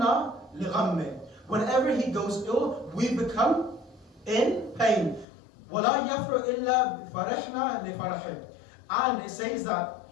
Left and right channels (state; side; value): drops out; right; at 5.2 s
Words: لغمه. Whenever he goes ill, we become in pain. ولا يفرح إلا فرحنا لفرحه. And it says that